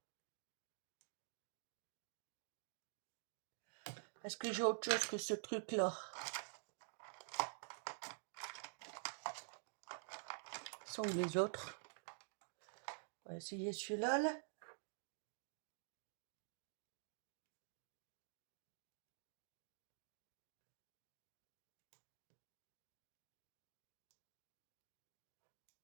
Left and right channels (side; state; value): left; silent; digital silence